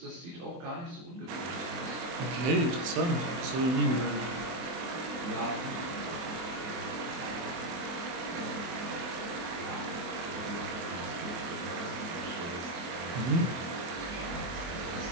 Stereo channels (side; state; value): left; late; 23 ms